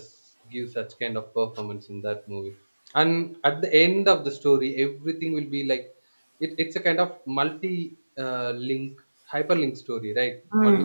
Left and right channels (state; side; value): inverted; both; correlation -1.00